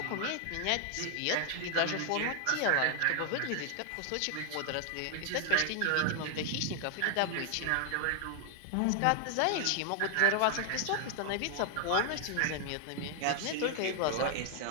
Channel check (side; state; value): both; different; correlation 0.00